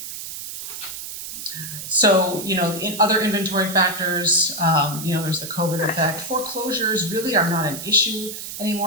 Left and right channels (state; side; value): noise; right; hiss, 9 dB below the sound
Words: So, in other inventory factors, there's the COVID effect. Foreclosures really are not an issue